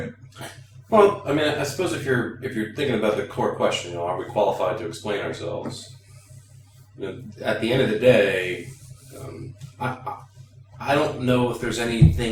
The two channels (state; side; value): identical; both; correlation 1.00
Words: Well, I mean, I suppose if you're thinking about the core question, are we qualified to explain ourselves? At the end of the day, I don't know if there's